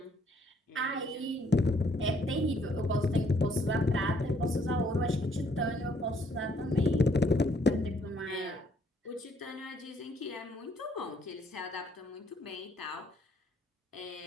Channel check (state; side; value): normal; both; correlation 0.67